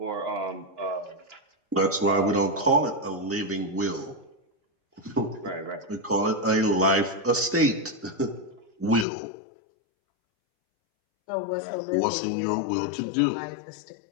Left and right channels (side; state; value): right; drops out; at 9.1 s